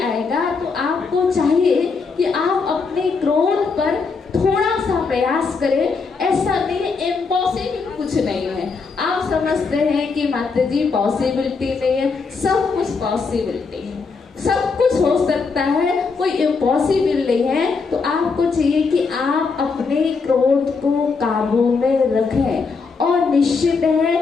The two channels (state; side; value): quieter; right; 4.8 dB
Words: आएगा। तो आपको चाहिए कि आप अपने क्रोध पर थोड़ा सा प्रयास करें। ऐसा नहीं, इम्पॉसिबल कुछ नहीं है। आप समझते हैं कि माता जी पॉसिबिलिटी नहीं है, सब कुछ पॉसिबिलिटी है, सब कुछ हो सकता है, कोई इम्पॉसिबल नहीं है। तो आपको चाहिए कि आप अपने क्रोध को काबू में रखें। और निश्चित